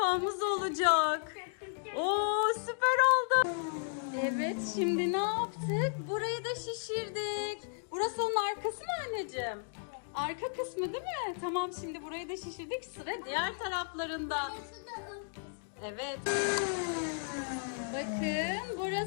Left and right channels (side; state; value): right; silent; digital silence